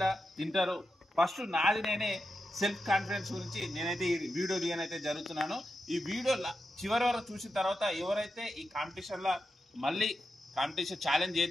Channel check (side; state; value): both; normal; correlation 0.88